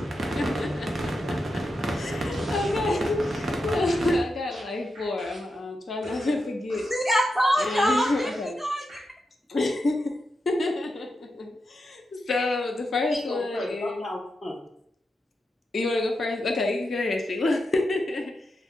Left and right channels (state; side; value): normal; both; correlation 0.87